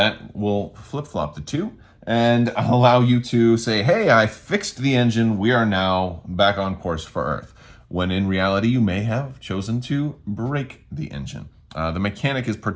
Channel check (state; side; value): identical; both; correlation 1.00